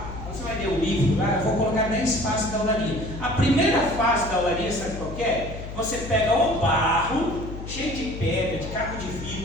quando você vai ler o livro lá, eu vou colocar 10 fases da olaria. A primeira fase da olaria, sabe qual que é? Você pega o barro, cheio de pedra, de caco de vidro,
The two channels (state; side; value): noise; left; hum, 10 dB below the sound